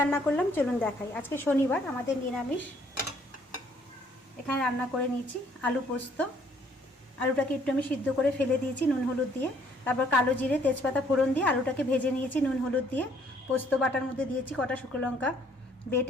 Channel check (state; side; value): normal; both; correlation 0.63